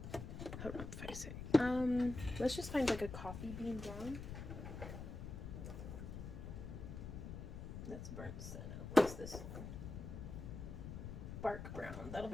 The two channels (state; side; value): noise; left; rumble, 7 dB below the sound